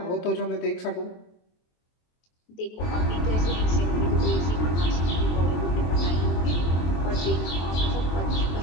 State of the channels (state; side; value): late; right; 23 ms